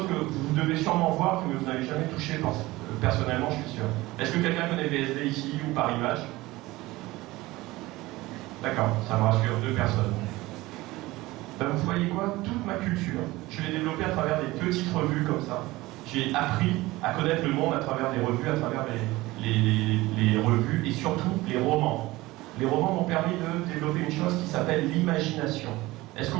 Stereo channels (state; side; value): quieter; left; 19.5 dB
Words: que vous devez sûrement voir, que vous n'avez jamais touché, personnellement, je suis sûr. Est-ce que quelqu'un connaît VSD ici ou Paris Match? D'accord, ça me rassure, 2 personnes. Ben, vous voyez quoi? Toute ma culture, je l'ai développée à travers des petites revues comme ça. J'ai appris à connaître le monde à travers des revues, à travers les revues et surtout les romans. Les romans m'ont permis de développer une chose qui s'appelle l'imagination. Est-ce